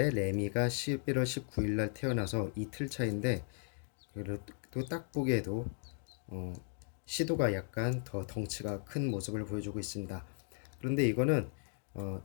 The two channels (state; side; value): silent; right; 53 dB below the other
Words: 레미가 11월 19일 날 태어나서 이틀 차인데 그래도 딱 보기에도 시도가 약간 더 덩치가 큰 모습을 보여주고 있습니다. 그런데 이거는